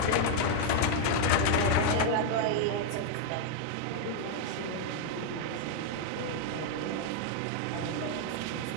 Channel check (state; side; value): different; both; correlation 0.00